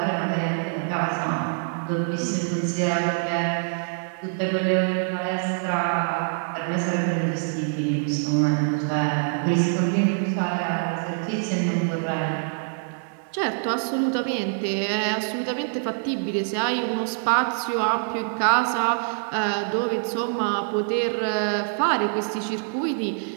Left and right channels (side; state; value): left; silent; digital silence